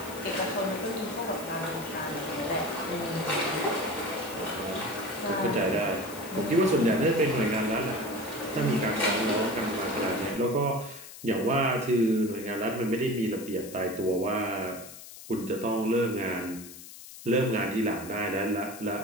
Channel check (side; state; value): left; noise; hiss, 15 dB below the sound